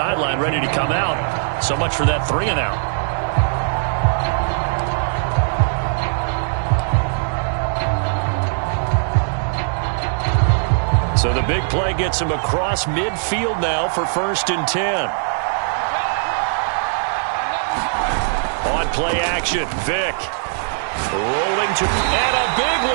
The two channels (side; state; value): left; silent; digital silence